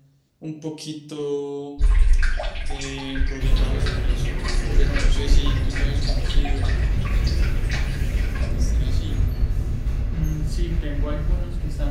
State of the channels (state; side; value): identical; both; correlation 1.00